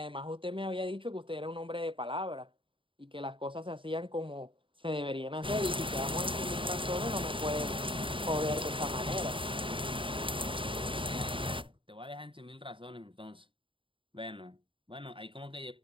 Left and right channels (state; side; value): late; left; 0.25 ms